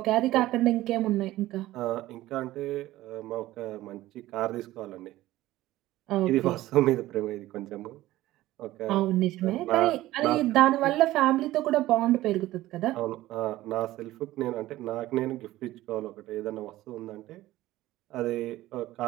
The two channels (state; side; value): quieter; left; 16.1 dB